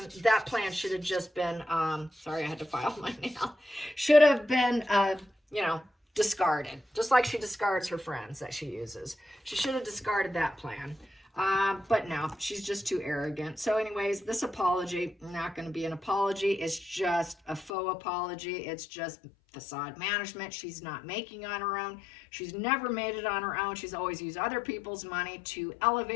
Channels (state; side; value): drops out; right; at 17.7 s